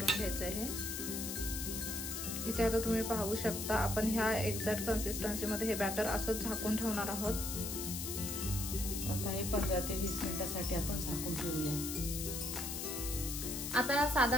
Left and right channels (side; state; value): left; noise; hiss, 4 dB below the sound